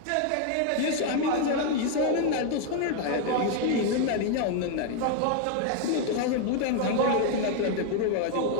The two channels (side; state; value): both; different; correlation 0.00